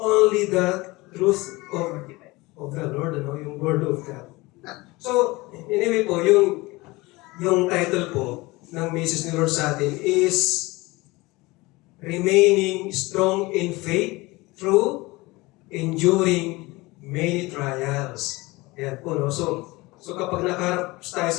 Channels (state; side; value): quieter; right; 22.1 dB